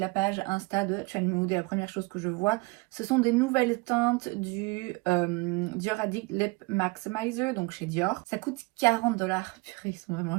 page Insta de Trendmood. Et la première chose que je vois, ce sont des nouvelles teintes du Dior Addict Lip Maximizer, donc chez Dior. Ça coûte 40$. Purée, ils sont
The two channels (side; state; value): left; quieter; 26.5 dB